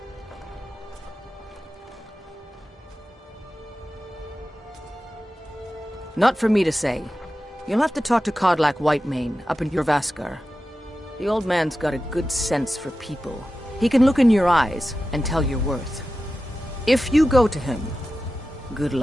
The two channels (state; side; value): normal; both; correlation 0.93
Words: Not for me to say. You'll have to talk to Kodlak Whitemane up in Jorvaskar. The old man's got a good sense for people. He can look in your eyes and tell your worth. If you go to him, good